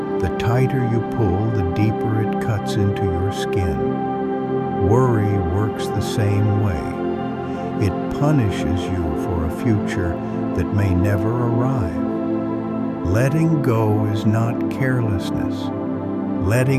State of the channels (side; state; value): both; identical; correlation 1.00